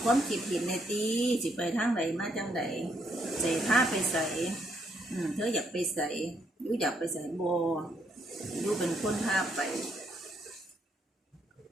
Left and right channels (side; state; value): both; normal; correlation 0.74